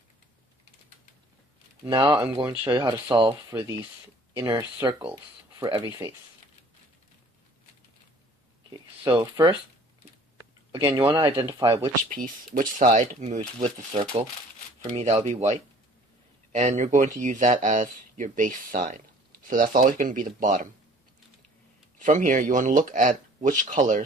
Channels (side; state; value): both; normal; correlation 0.52